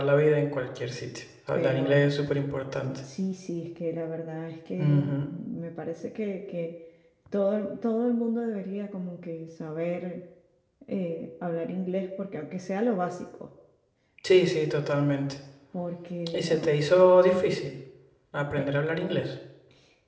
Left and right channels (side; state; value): both; identical; correlation 1.00